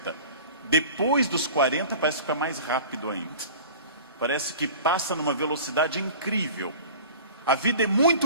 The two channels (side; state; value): both; inverted; correlation -0.41